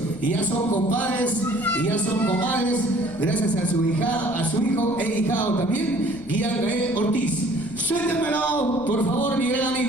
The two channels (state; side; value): noise; left; rumble, 19 dB below the sound